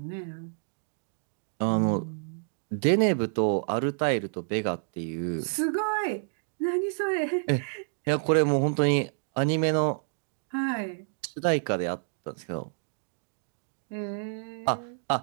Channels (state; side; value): silent; left; digital silence